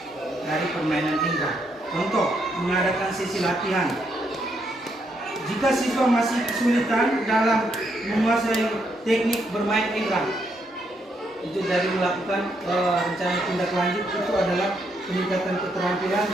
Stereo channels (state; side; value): normal; both; correlation 0.76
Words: dari permainan indra. Contoh, mengadakan sesi latihan. Jika siswa masih kesulitan dalam menguasai teknik bermain indra, itu dari melakukan rencana tindak lanjut itu adalah peningkatan keterampilan,